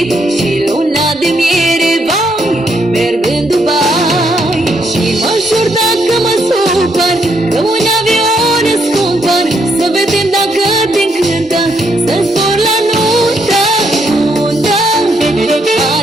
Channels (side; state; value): both; normal; correlation 0.75